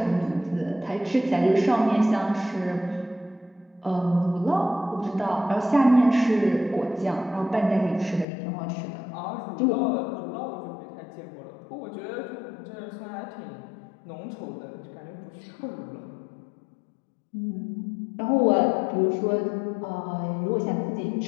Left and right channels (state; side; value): drops out; right; at 8.2 s